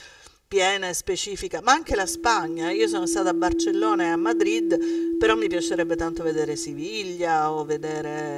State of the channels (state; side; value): identical; both; correlation 1.00